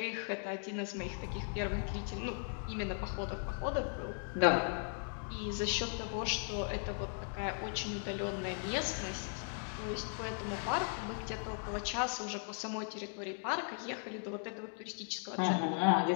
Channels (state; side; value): silent; right; 53 dB below the other